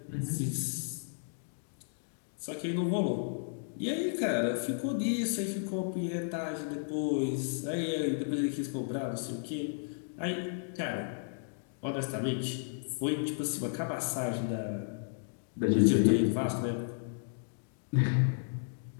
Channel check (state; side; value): silent; right; digital silence